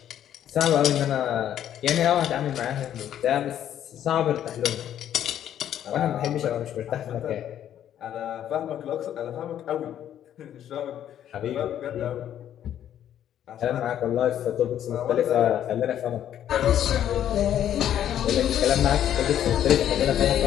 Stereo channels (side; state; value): right; quieter; 10.6 dB